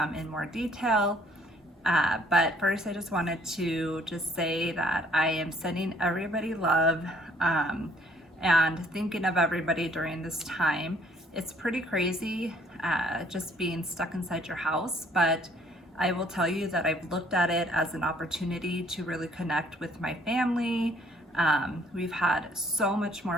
in more detail. But first, I just wanted to say that I am sending everybody love and thinking of everybody during this time. It's pretty crazy just being stuck inside your house, but I will tell you that I've looked at it as an opportunity to really connect with my family. We've had so much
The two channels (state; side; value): normal; both; correlation 0.62